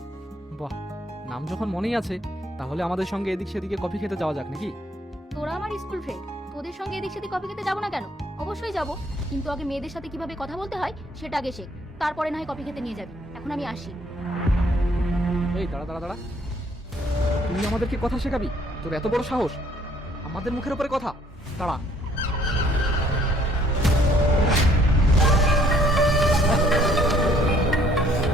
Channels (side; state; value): both; normal; correlation 0.63